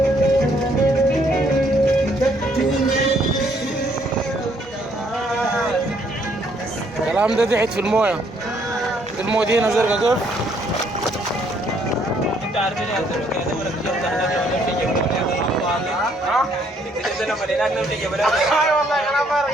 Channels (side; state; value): both; normal; correlation 0.68